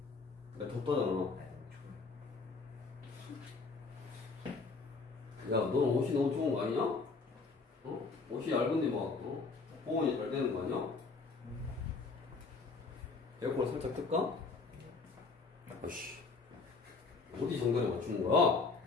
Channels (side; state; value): right; quieter; 4.2 dB